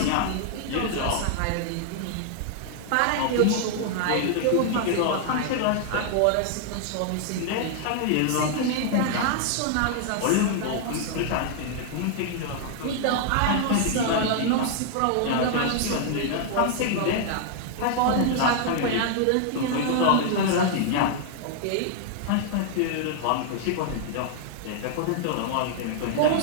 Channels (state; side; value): different; both; correlation 0.00